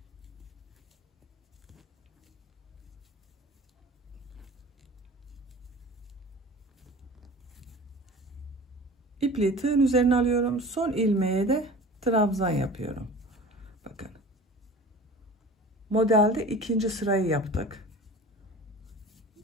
İpliği tığın üzerine alıyorum. Son ilmeğe de trabzan yapıyorum. Bakın. Modelde ikinci sırayı yaptık.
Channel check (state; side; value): normal; both; correlation 0.40